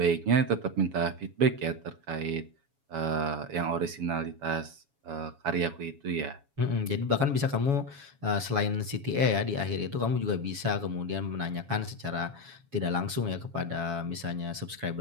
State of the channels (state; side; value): late; left; 7.2 ms